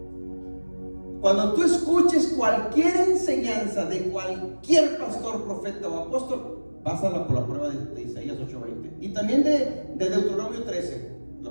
Cuando tú escuches cualquier enseñanza de cualquier pastor, profeta o apóstol, pásala por la prueba de Isaías 8:20 y también de Deuteronomio 13.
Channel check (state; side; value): inverted; both; correlation -1.00